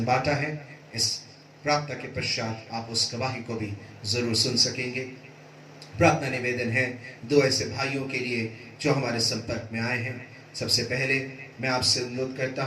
बांटा है। इस प्रार्थना के पश्चात आप उस गवाही को भी जरूर सुन सकेंगे। प्रार्थना निवेदन है 2 ऐसे भाइयों के लिए जो हमारे संपर्क में आए हैं। सबसे पहले मैं आपसे अनुरोध करता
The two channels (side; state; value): both; identical; correlation 1.00